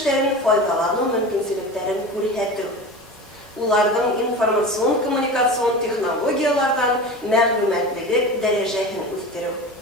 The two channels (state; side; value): normal; both; correlation 0.31